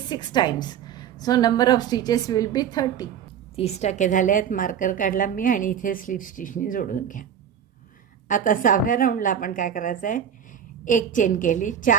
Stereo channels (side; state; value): left; quieter; 8.6 dB